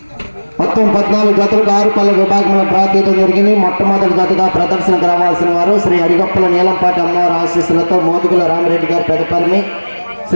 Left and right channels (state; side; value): inverted; both; correlation -1.00